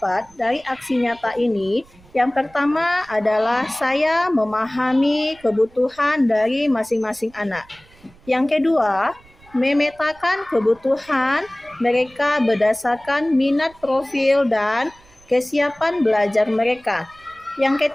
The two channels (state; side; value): noise; right; rumble, 27 dB below the sound